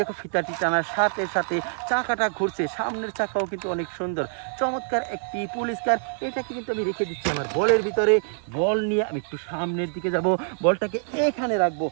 ফিতাটি টানার সাথে সাথে চাকাটা ঘুরছে। সামনের চাকাও কিন্তু অনেক সুন্দর। চমৎকার একটি পুলিশ কার। এটাকে কিন্তু আমি রেখে দিচ্ছি আমার বলের ভিতরে। বল নিয়ে আমি একটু সামনের দিকে যাব। বলটাকে এখানে রাখবো।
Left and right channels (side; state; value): left; silent; 61 dB below the other